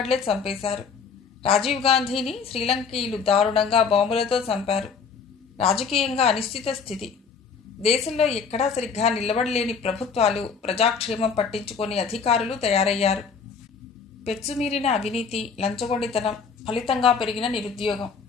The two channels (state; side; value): quieter; right; 5.8 dB